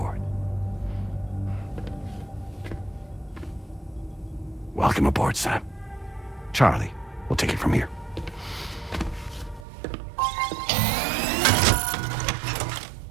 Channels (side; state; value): left; drops out; at 9.7 s